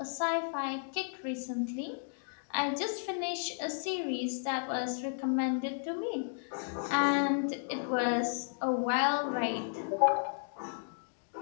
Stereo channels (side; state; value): right; silent; digital silence